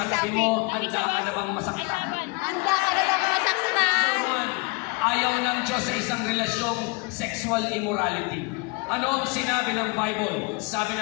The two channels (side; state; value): right; quieter; 29.0 dB